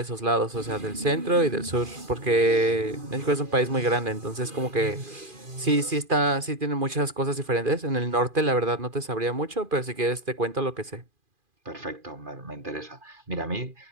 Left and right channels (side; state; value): left; late; 2.4 ms